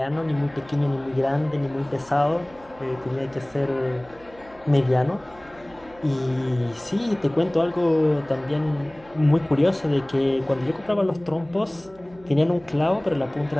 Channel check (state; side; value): noise; right; hum, 25 dB below the sound